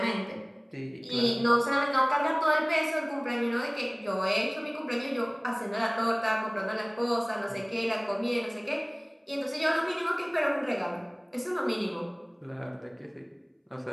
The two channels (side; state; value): both; identical; correlation 1.00